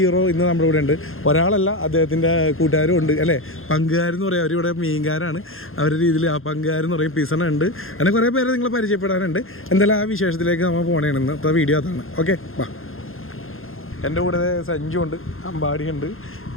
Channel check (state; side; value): late; right; 0.60 ms